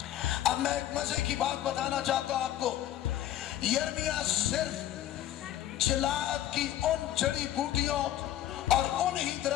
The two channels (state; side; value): quieter; right; 12.3 dB